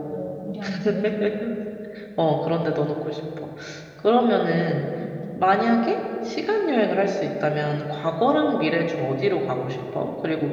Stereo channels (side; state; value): both; identical; correlation 1.00